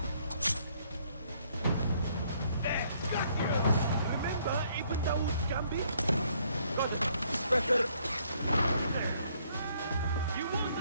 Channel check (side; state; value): both; inverted; correlation -0.67